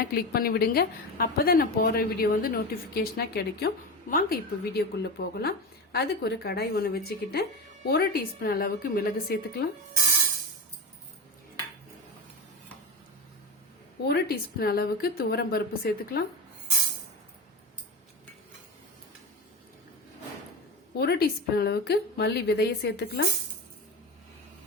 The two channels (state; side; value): normal; both; correlation 0.22